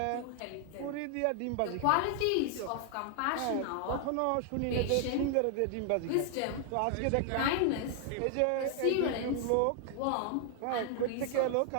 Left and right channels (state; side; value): different; both; correlation 0.00